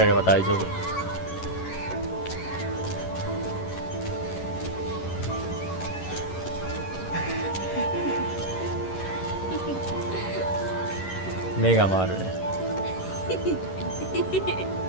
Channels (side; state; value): right; late; 11 ms